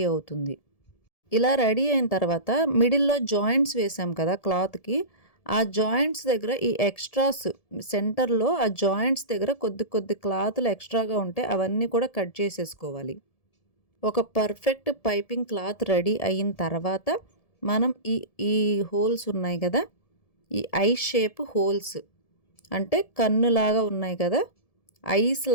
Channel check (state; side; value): late; right; 1.7 ms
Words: అవుతుంది. ఇలా రెడీ అయిన తర్వాత మిడిల్లో జాయింట్స్ వేసాం కదా క్లాత్కి, ఆ జాయింట్స్ దగ్గర ఈ ఎక్స్ట్రాస్ సెంటర్లో ఆ జాయింట్స్ దగ్గర కొద్ది కొద్ది క్లాతులు ఎక్స్ట్రాగా ఉంటే అవన్నీ కూడా కట్ చేసేసుకోవాలి. ఒక పర్ఫెక్ట్ పైపింగ్ క్లాత్ రెడీ అయిన తర్వాత మనం ఈ హోల్స్ ఉన్నాయి కదా, ఈ ఐ షేప్ హోల్స్ అంటే కన్నులాగా ఉన్నాయి కదా, ఐస్